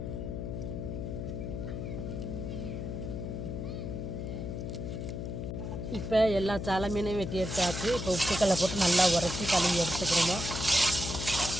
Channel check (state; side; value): noise; left; hum, 5 dB below the sound